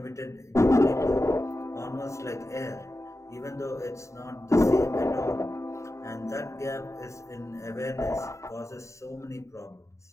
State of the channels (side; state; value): right; late; 0.14 ms